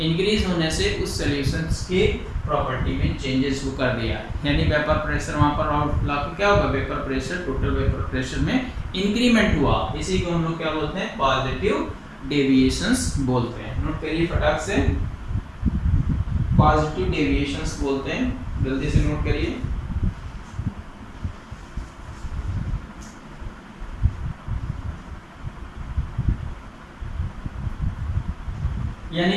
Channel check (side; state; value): both; identical; correlation 1.00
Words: इंक्रीज होने से उस सॉल्यूशंस के प्रॉपर्टी में चेंजेस को कर दिया, यानी वेपर प्रेशर वहां पर आउटफ्लो क्या होगा, vapour pressure, total vapour pressure में इंक्रीमेंट हुआ। इसी को हम लोग क्या बोलते हैं, पॉजिटिव डेविएशंस बोलते हैं। नोट करिए फटाक से, पॉजिटिव डेविएशंस बोलते हैं, जल्दी से नोट करिए। यानी